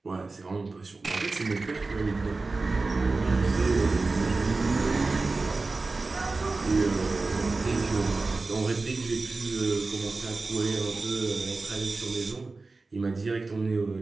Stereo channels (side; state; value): left; quieter; 3.7 dB